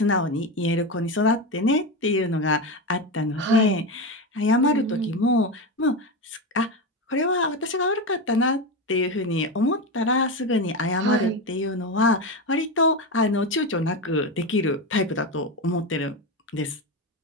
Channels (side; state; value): both; normal; correlation 0.16